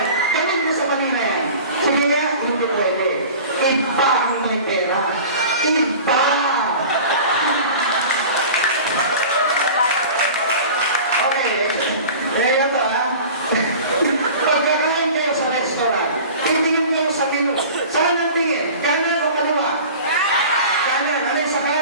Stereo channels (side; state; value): both; inverted; correlation -0.39